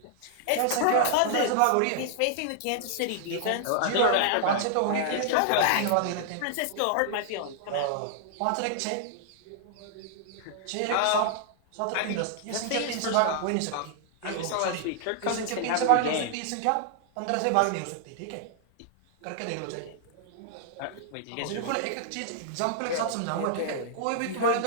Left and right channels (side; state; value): both; different; correlation -0.01